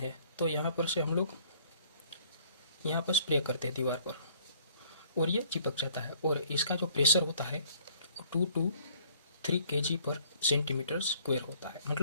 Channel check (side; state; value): both; inverted; correlation -0.59